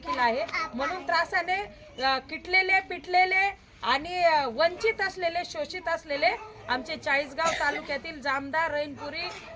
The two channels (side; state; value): both; identical; correlation 1.00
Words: आहे। म्हणून त्रासाने किटलेले पिटलेले आणि वंचित असलेले शोषित असलेले आमचे चाळीसगाव तालुक्यातील जामदा रहीमपुरी